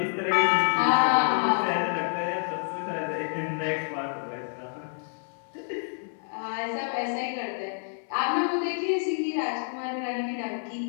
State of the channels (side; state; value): right; silent; 59 dB below the other